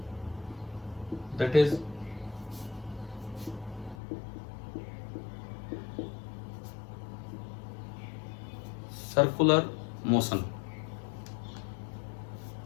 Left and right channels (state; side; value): drops out; right; at 4.0 s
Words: दैट इज सर्कुलर मोशन।